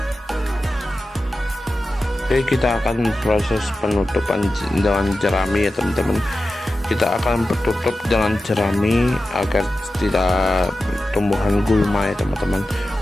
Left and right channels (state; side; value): normal; both; correlation 0.93